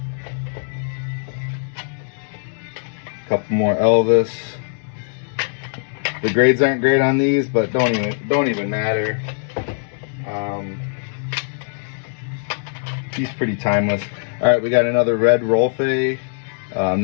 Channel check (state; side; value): silent; right; digital silence